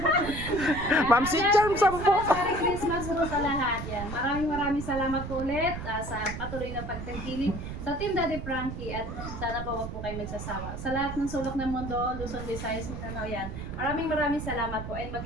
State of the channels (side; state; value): right; noise; rumble, 7 dB below the sound